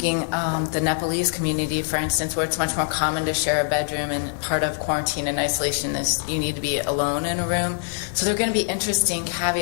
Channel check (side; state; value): right; silent; digital silence